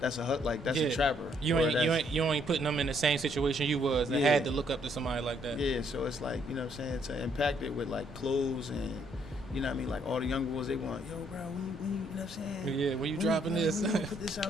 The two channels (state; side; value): normal; both; correlation 0.69